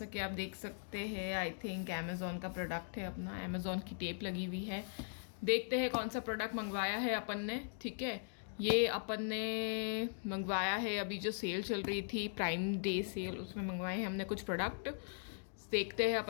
कि आप देख सकते हैं, आई थिंक अमेज़ॉन का प्रोडक्ट है। अपना अमेज़ॉन की टेप लगी हुई है। देखते हैं कौन सा प्रोडक्ट मंगवाया है अपन ने। ठीक है, ये अपन ने मंगवाया है अभी जो सेल चल रही थी, प्राइम डे सेल, उसमें मंगवाए हैं हमने कुछ प्रोडक्ट। देखते हैं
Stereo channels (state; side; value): silent; right; digital silence